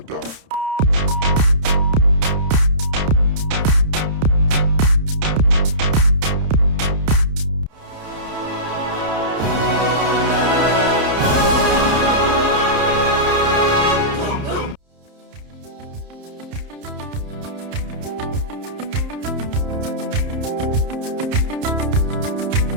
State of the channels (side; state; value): left; late; 30 ms